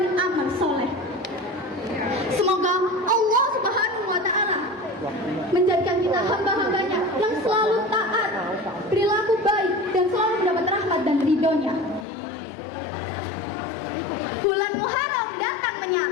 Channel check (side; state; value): right; drops out; at 12.1 s